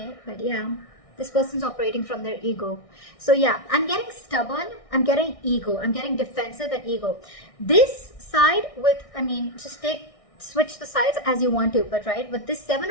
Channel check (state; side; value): late; right; 1.6 ms